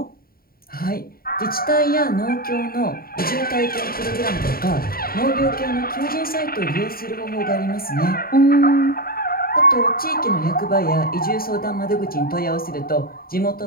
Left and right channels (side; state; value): right; late; 0.43 ms